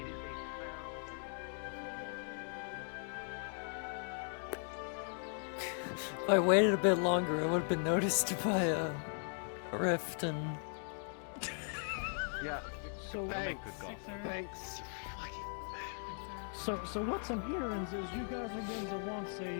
If I waited a bit longer, I would have been noticed by a rift and... Yeah. So Thanks. So what I'm hearing is you guys are going to want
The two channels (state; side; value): silent; right; 52 dB below the other